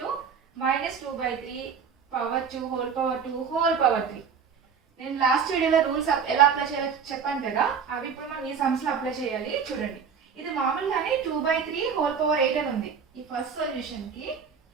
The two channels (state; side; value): quieter; left; 6.5 dB